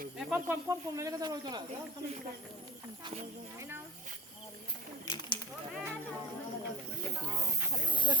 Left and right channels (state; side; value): normal; both; correlation 0.35